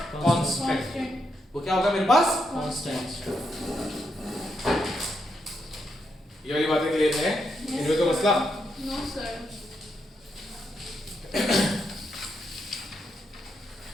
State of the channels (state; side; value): normal; both; correlation 0.81